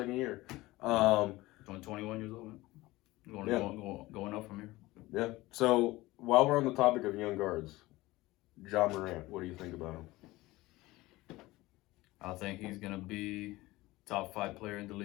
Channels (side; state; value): right; quieter; 19.2 dB